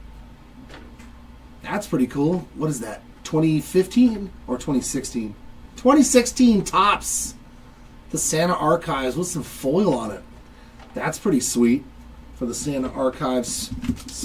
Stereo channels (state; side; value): identical; both; correlation 1.00